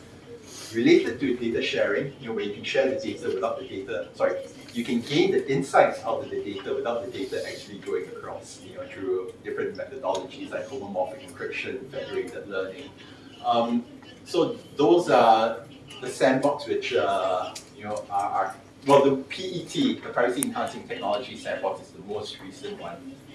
related to data sharing, where you can share the data without the data, sorry, you can gain the insights out of the data without the data actually going across, through different methodologies like homomorphic encryption, federated learning. So those are the sandbox which, are well, the PET, the privacy enhancing technology sandbox is the most recent one.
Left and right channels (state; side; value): identical; both; correlation 1.00